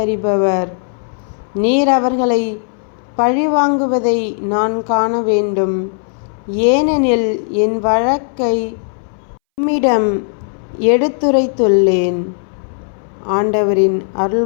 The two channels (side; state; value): right; silent; 65 dB below the other